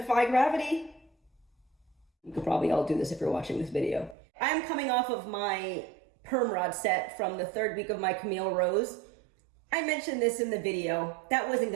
gravity. You could probably all do this if you're watching this video. I'm coming off of my perm rod set from the third week of my Camille Rose. I mentioned this in the video. That wasn't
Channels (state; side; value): drops out; left; at 4.2 s